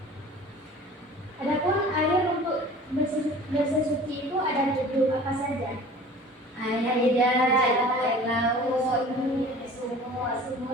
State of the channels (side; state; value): both; normal; correlation 0.44